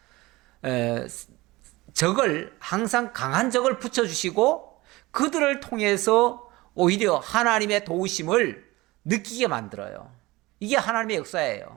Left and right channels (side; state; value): left; quieter; 20.6 dB